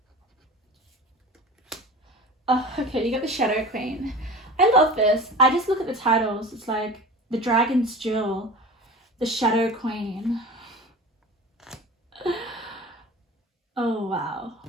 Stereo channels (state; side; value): normal; both; correlation 0.35